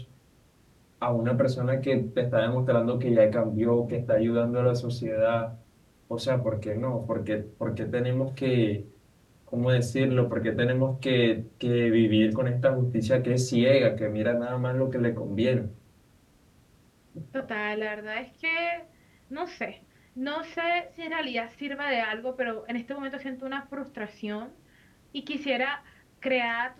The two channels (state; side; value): identical; both; correlation 1.00